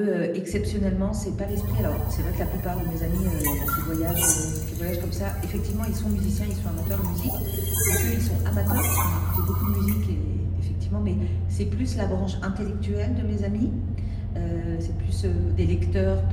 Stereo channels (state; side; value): identical; both; correlation 1.00